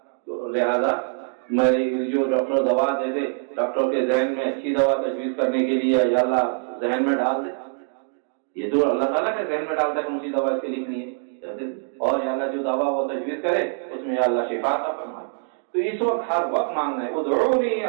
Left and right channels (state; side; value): silent; left; 61 dB below the other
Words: لہذا میری جو ڈاکٹر دوا دے دے، ڈاکٹر کے ذہن میں اچھی دوا تجویز کرنے کے لیے یا اللہ ذہن میں ڈال دے. یہ تو اللہ تعالیٰ کے ذہن میں ڈالتا ہے کون سی دوا اس کے لکھنی ہے، اور یا اللہ جو دوا وہ تجویز کرے اس میں یا اللہ شفا عطا فرمائے. تو اس وقت ہر وقت مانگنا ہے. ادعونی